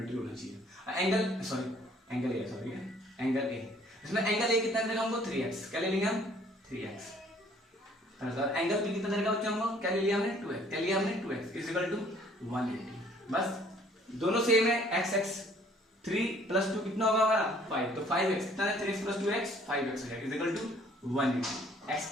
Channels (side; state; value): both; normal; correlation 0.58